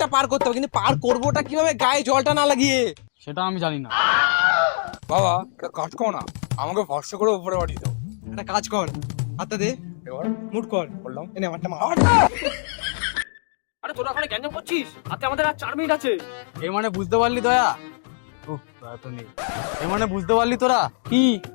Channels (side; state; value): right; silent; digital silence